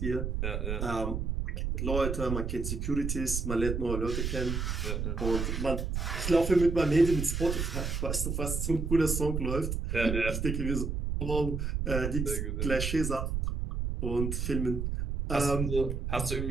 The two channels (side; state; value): right; noise; rumble, 2 dB below the sound